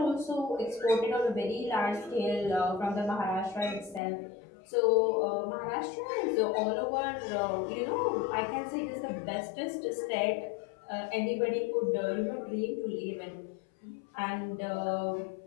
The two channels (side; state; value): right; drops out; at 4.0 s